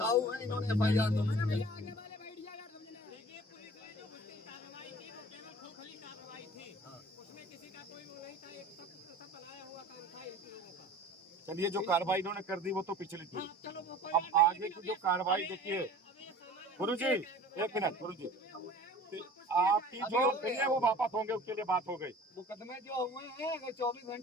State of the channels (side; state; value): both; normal; correlation 0.44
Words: है, इन्होंने FIR दो। चलिए, जो कार्रवाई इन्होंने कर दी वो तो पिछली थी। अब आगे की जो कार्रवाई देखिए गुरुजी, एक मिनट गुरुजी, आपकी जो है वो वापस होंगे, उसके लिए बात हो गई। मुकदमे जो हुए हैं अगर 24